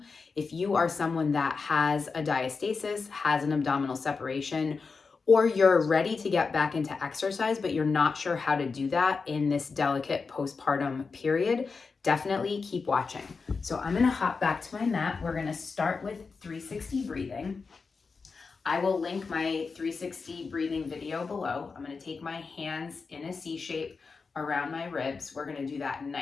if you are someone that has a diastasis, has an abdominal separation, or you're ready to get back into exercise, but you're not sure how to do that in this delicate postpartum period, definitely keep watching. So I'm gonna hop back to my mat. We're gonna start with 360 breathing. I will link my 360 breathing video below. I'm gonna take my hands in a C shape around my ribs. We're gonna do that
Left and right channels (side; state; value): right; quieter; 4.7 dB